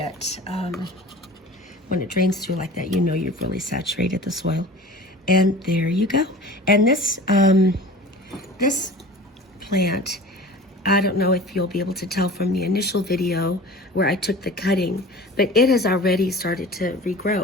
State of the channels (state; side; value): normal; both; correlation 0.39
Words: when it drains through like that, you know you've really saturated the soil. And there you go. And this, this plant, I don't know if you'll be able to tell from the initial video where I took the cutting, but it has already started to